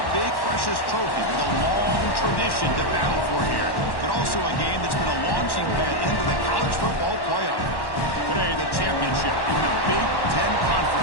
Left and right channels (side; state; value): right; late; 1.1 ms